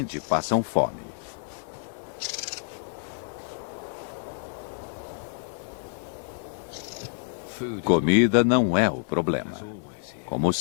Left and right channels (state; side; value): silent; right; digital silence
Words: passam fome. Comida não é o problema. Como